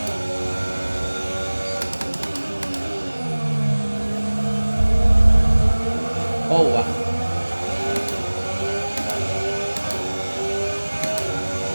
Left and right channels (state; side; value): inverted; both; correlation -1.00